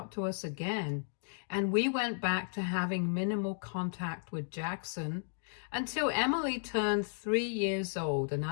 to us again, and we went back to having minimal contact with Jackson until Emily turned 3 years old, and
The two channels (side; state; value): right; silent; digital silence